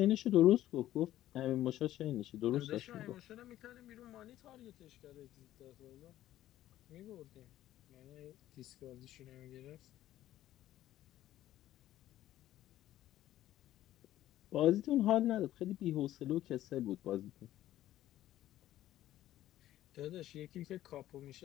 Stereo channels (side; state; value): right; quieter; 13.6 dB